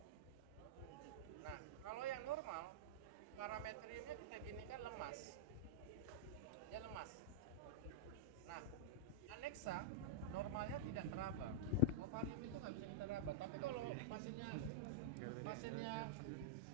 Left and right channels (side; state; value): both; normal; correlation -0.05